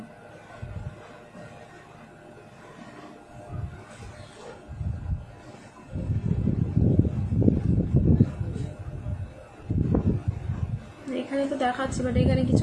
এখানে তো দেখাচ্ছে, বাট এখানে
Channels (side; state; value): both; identical; correlation 1.00